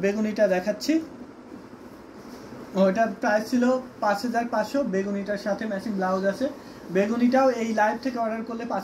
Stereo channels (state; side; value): identical; both; correlation 1.00